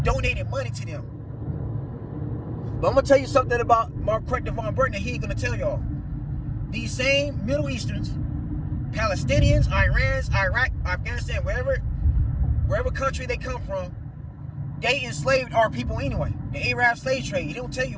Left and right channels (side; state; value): both; identical; correlation 1.00